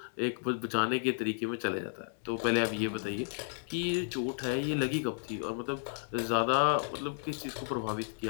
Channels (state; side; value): silent; right; 56 dB below the other